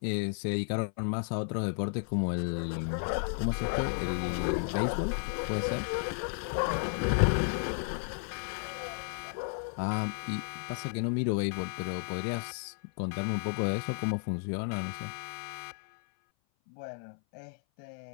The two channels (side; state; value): right; silent; 56 dB below the other